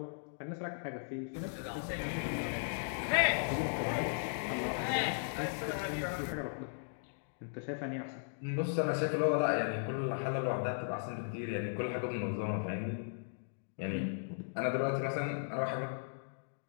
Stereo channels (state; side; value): silent; right; digital silence